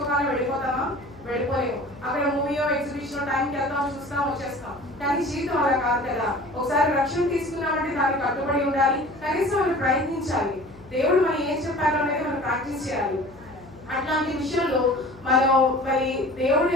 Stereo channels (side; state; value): left; noise; hum, 22 dB below the sound